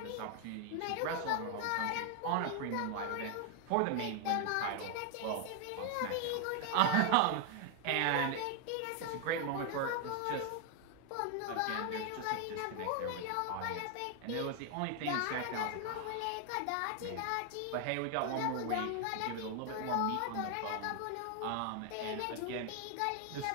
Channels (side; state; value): both; different; correlation 0.00